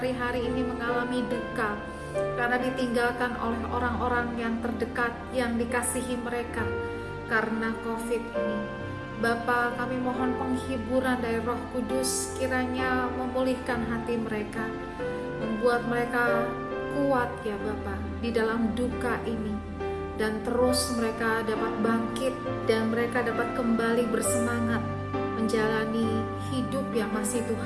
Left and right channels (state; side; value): noise; right; hum, 29 dB below the sound